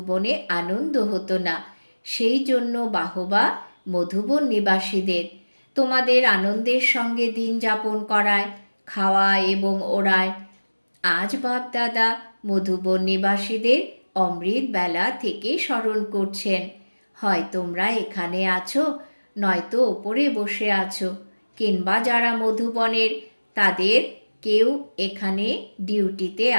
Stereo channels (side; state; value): both; inverted; correlation -1.00